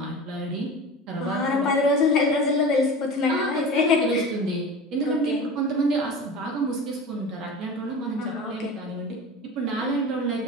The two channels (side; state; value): both; normal; correlation 0.33